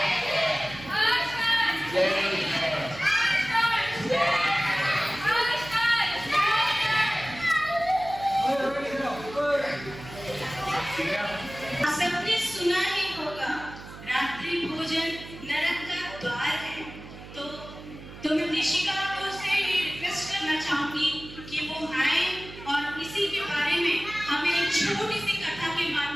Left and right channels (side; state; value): right; noise; hum, 15 dB below the sound